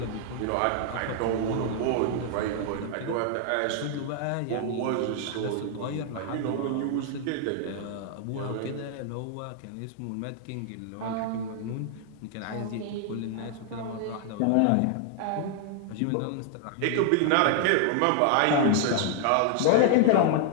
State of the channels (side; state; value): both; different; correlation 0.00